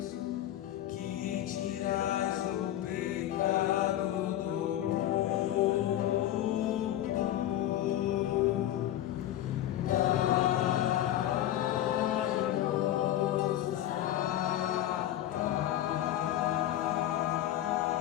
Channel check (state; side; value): quieter; right; 12.8 dB